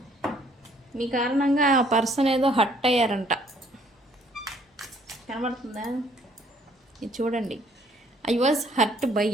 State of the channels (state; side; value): normal; both; correlation 0.62